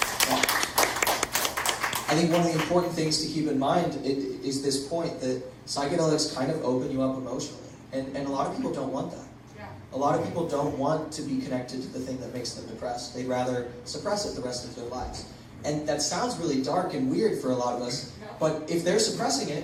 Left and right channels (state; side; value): identical; both; correlation 1.00